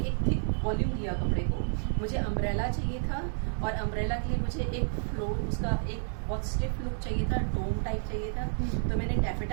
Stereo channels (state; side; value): silent; left; digital silence